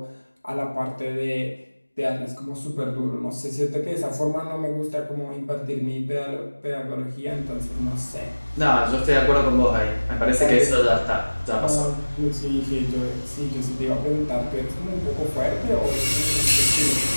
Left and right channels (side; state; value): both; inverted; correlation -1.00